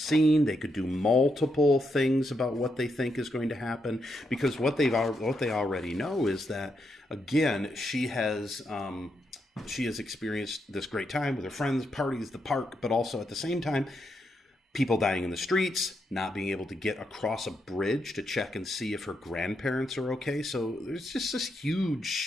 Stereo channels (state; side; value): normal; both; correlation 0.81